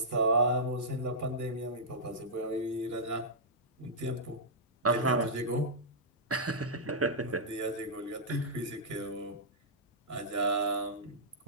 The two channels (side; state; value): both; normal; correlation -0.13